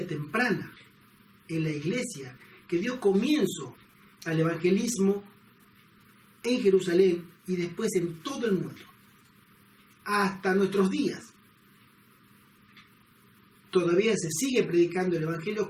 temprana en la iglesia que dio comienzo al evangelismo en Jerusalén y después en todo el mundo. Hasta nuestros días. Todavía se sigue predicando el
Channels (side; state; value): both; identical; correlation 1.00